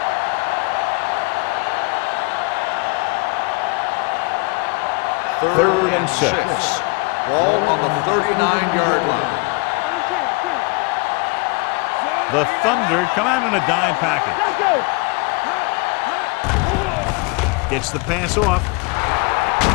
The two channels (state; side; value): quieter; right; 28.2 dB